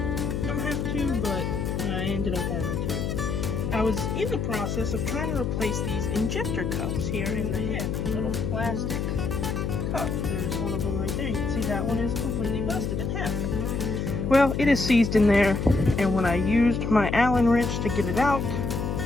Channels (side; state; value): left; noise; hum, 2 dB below the sound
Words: don't have to, but I ended up having to. I was in the process of trying to replace these injector cups here in the head. Little plastic cups. There's one of them right there. You can see that one is completely busted in half. Well, it is seized in there, and when I used my Allen wrench to get it out,